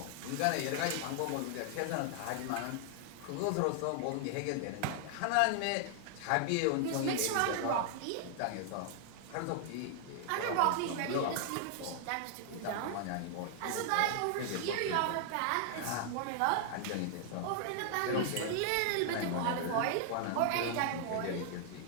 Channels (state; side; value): different; both; correlation 0.00